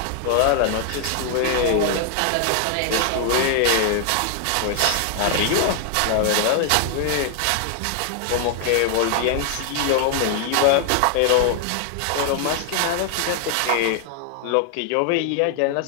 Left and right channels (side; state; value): both; different; correlation 0.00